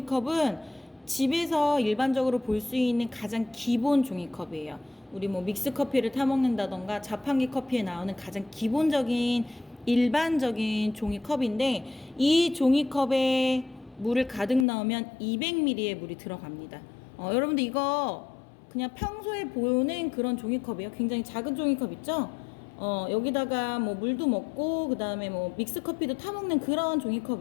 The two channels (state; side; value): drops out; right; at 14.7 s